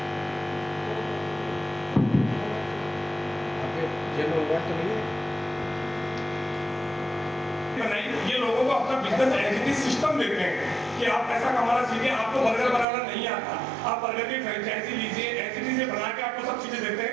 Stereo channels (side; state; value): left; drops out; at 12.9 s